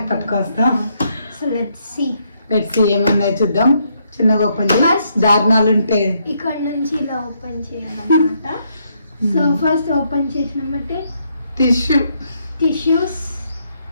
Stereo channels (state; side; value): inverted; both; correlation -0.74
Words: పట్టుకొస్తాం. సో లెట్స్ సీ ఏముందో చూద్దాం. చిన్నగా ఓపెన్ చేసి దారుణాలు ఉంటే ఇక్కడ నుంచి ఇలా ఓపెన్ చేయాలన్నమాట. సో ఫస్ట్ ఓపెన్ చేసినామంటే టిష్యూస్